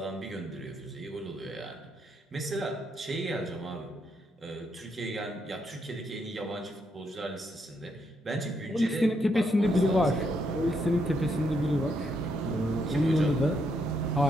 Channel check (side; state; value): both; normal; correlation 0.77